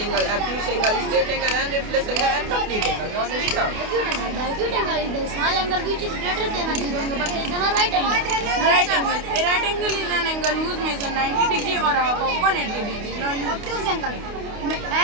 obtuse angle, straight angle, and reflex angle, and complete angle. Now let's start. Acute angle. The acute angle is the small angle which is greater than a 0 angle but less than a right angle. Right angle. A right angle is an angle whose measure 90 degree or half of 180 degree. Now you Obtuse angle.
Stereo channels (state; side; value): late; left; 28 ms